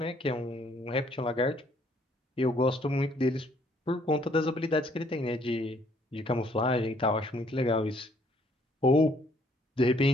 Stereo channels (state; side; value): normal; both; correlation 0.64